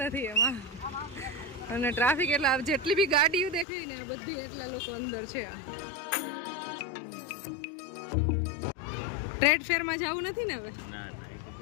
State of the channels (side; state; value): right; drops out; at 3.7 s